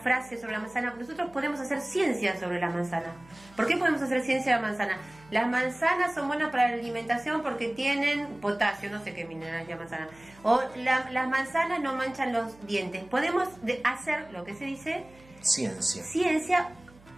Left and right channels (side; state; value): right; noise; hum, 25 dB below the sound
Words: sobre la manzana. Nosotros podemos hacer ciencia sobre la manzana. ¿Por qué podemos hacer ciencia de la manzana? Las manzanas son buenas para la alimentación porque tienen potasio, no sé qué mineral es la manzana. O las manzanas no manchan los dientes. Podemos hacer lo que se dice ciencia